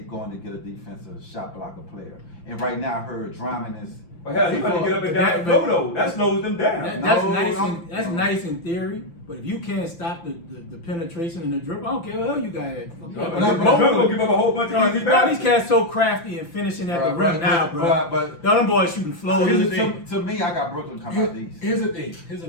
to get a defensive shot blocker player. And right now, I heard Drummond is. But hell, he better get up and down and go though. That slows them down. That's nice in theory, but if you can't stop the penetration and the dribble, I don't care what hell you got at. Gonna give up a whole bunch of easy These passes. cats so crafty and finishing at the rim now, bro. But the other boys shooting floaters. to me, I got Brooklyn coming out these. Here's the thing.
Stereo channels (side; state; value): right; late; 5.9 ms